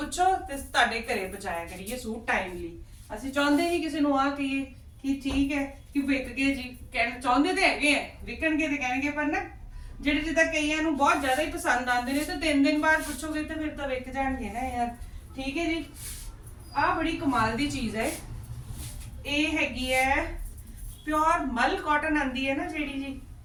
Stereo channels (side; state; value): both; identical; correlation 1.00